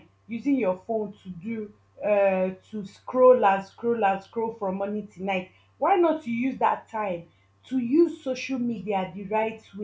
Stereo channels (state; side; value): identical; both; correlation 1.00